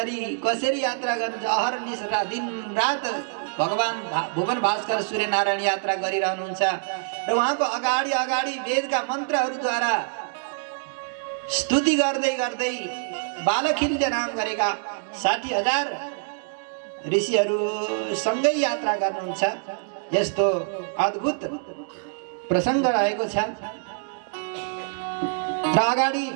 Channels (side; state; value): left; silent; digital silence